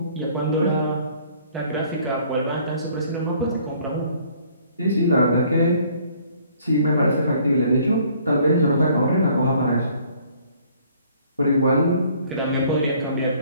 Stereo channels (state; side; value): inverted; both; correlation -0.59